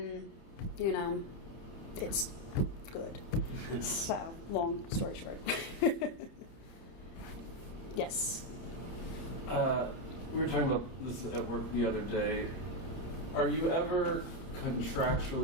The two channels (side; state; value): right; late; 30 ms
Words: you know, it's good. So, long story short. Yes. We were talking about this at work the other day. Are you ever